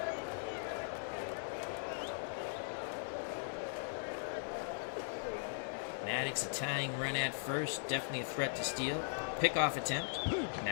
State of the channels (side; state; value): right; silent; digital silence